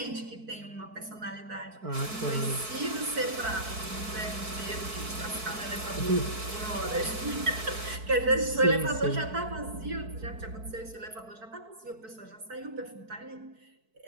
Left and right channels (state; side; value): late; left; 4.6 ms